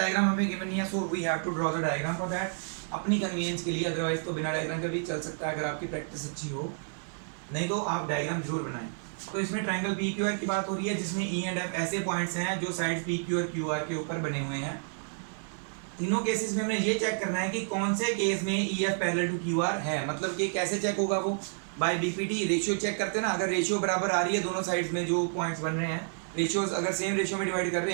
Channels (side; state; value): left; silent; digital silence